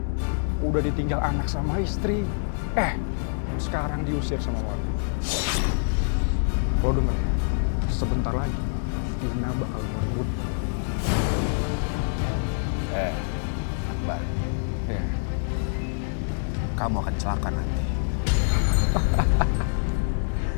Udah ditinggal anak sama istri. Sekarang diusir sama warga. Lo denger ya, sebentar lagi Dina bakal merebut. Akbar, Ya. kamu akan celaka nanti.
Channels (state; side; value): silent; right; digital silence